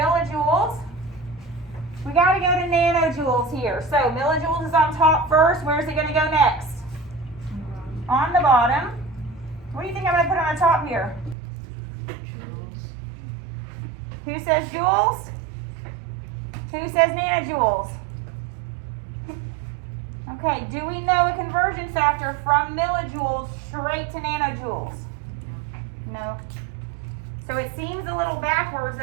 We got to go to nanojoules here. So millijoules is on top first. Where's it going to go next? On the bottom. What do you think I'm going to put on the top here? Who says joules? Who says nanojoules? Okay, do we know a conversion factor from millijoules straight to nanojoules? No. So it seems a little backwards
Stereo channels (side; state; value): left; drops out; at 11.4 s